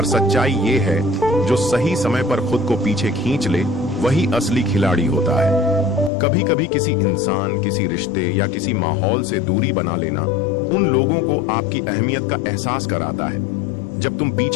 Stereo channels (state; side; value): drops out; right; at 6.1 s